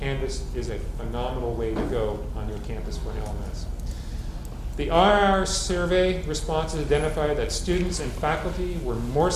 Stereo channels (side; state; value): both; identical; correlation 1.00